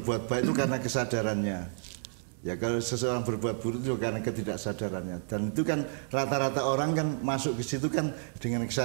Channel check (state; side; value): silent; left; digital silence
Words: baik itu karena kesadarannya. Ya kalau seseorang berbuat buruk itu karena ketidaksadarannya, dan itu kan rata-rata orang kan masuk ke situ kan dengan